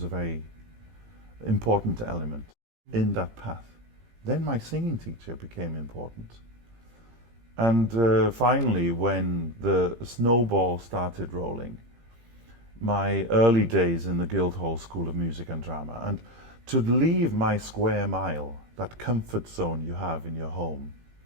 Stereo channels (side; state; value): left; late; 17 ms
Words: a very important element in that path. Then my singing teacher became important. And finally, when the snowball started rolling, my early days in the Guildhall School of Music and Drama, and to leave my square mile, that comfort zone you have in your home,